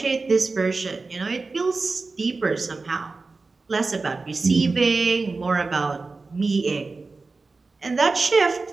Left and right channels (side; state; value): left; quieter; 3.9 dB